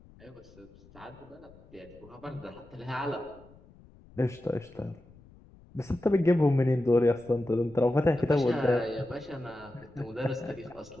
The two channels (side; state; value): left; noise; rumble, 24 dB below the sound